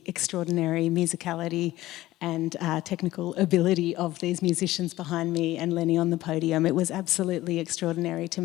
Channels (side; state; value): right; quieter; 16.3 dB